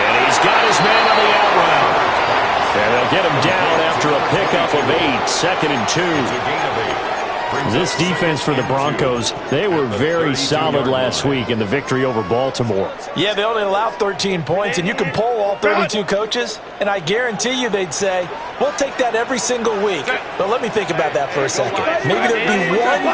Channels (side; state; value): both; identical; correlation 1.00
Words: he's got his man on the out route. And they'll get him down after a pickup of 8, 2nd and 2. This defense for the Broncos, they were very solid last week in the victory over Baltimore. Yeah, they only allowed 13 points, and you can poll all 32 coaches, and I guarantee you they'd say, we'll take that every single week. But let me think about that for a second. Maybe there'd be